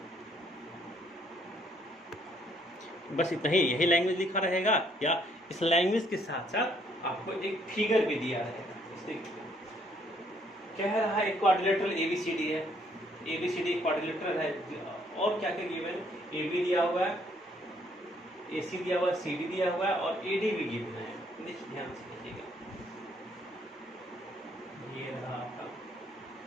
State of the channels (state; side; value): normal; both; correlation 0.67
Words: बस इतना ही यही लैंग्वेज लिखा रहेगा, या इस लैंग्वेज के साथ साथ आपको एक फिगर भी दिया रहेगा। इसलिए कह रहा है एक क्वाड्रिलेटरल एबीसीडी है, एबीसीडी क्वाड्रिलेटरल है, और क्या क्या गिवन, एबी दिया हुआ है, एसी दिया हुआ है, सीडी दिया हुआ है और एडी भी गिवन है। देखिए ध्यान से देखिएगा, ये रहा आपका